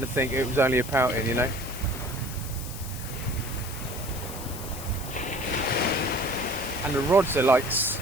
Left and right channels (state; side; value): noise; left; hiss, 11 dB below the sound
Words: to think it was only a pouting, you know. And the rods are like